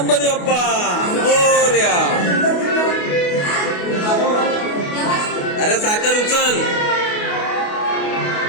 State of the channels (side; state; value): right; late; 28 ms